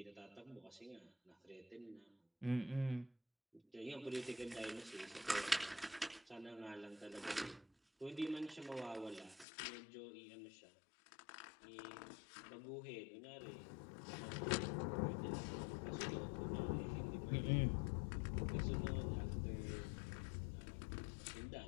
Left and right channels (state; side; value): drops out; right; at 9.5 s